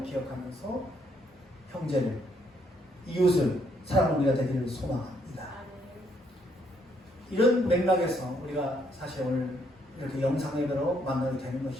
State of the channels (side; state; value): both; normal; correlation 0.71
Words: 기억하면서 형제를, 이웃을 사랑하는 우리가 되기를 소망합니다. 이런 맥락에서 우리가 사실 오늘 이렇게 영상 예배로 만나게 되는